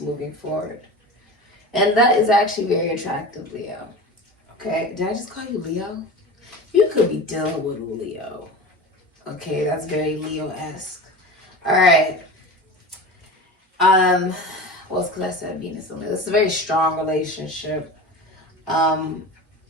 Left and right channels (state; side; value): normal; both; correlation 0.31